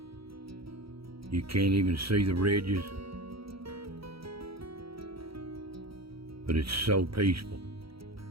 you can't even see the ridges. But it's so peaceful,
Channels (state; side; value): late; left; 0.75 ms